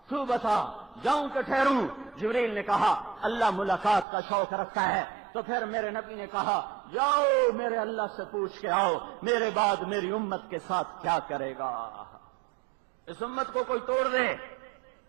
تو بتا جاؤں کہ ٹھہروں؟ جبریل نے کہا اللہ ملاقات کا شوق رکھتا ہے، تو پھر میرے نبی نے کہا جاؤ میرے اللہ سے پوچھ کے آؤ میرے بعد میری امت کے ساتھ کیا کرے گا، اس امت کو کوئی توڑ دے،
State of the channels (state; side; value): drops out; left; at 4.0 s